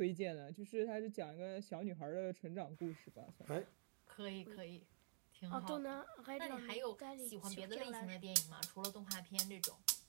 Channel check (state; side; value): silent; left; digital silence